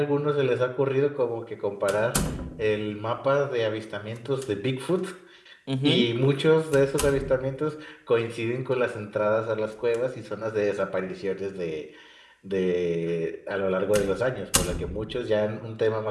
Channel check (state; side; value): identical; both; correlation 1.00